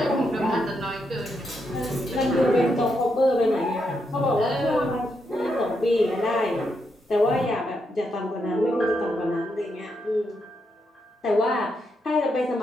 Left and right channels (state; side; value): normal; both; correlation 0.81